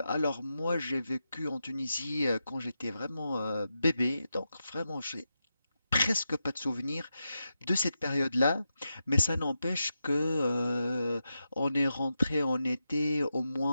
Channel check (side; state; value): both; inverted; correlation -0.88